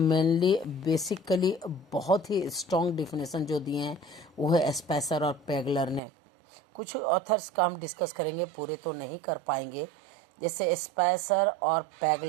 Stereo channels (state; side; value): drops out; left; at 6.0 s